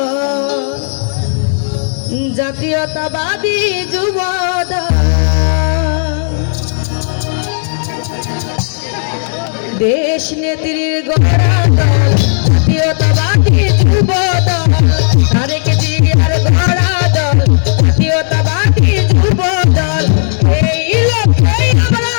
জাতীয়তাবাদী যুব দল দেশ নেত্রীর গড়া দল জাতীয়তাবাদী যুব দল তারেক জিয়ার গড়া দল জাতীয়তাবাদী যুব দল এই লক্ষ্যে আমরা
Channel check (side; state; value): right; silent; digital silence